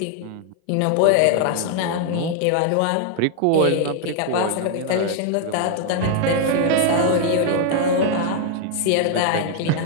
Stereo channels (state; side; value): different; both; correlation 0.00